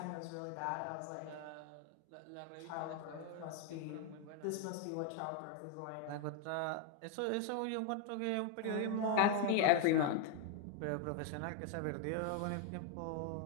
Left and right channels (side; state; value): both; different; correlation 0.00